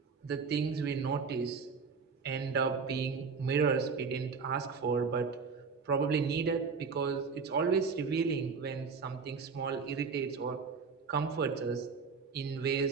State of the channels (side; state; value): left; quieter; 5.3 dB